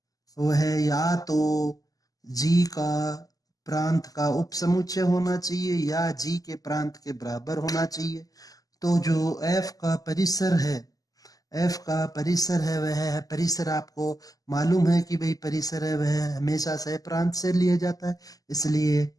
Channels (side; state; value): right; late; 0.17 ms